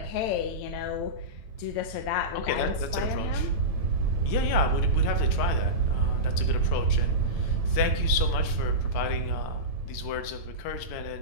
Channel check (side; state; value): right; late; 9.1 ms